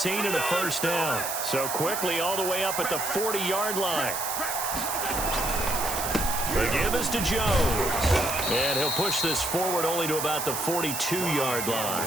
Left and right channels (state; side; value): noise; right; hiss, 4 dB below the sound